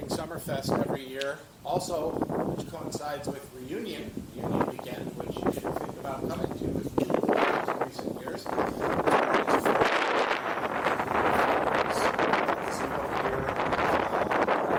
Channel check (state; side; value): identical; both; correlation 1.00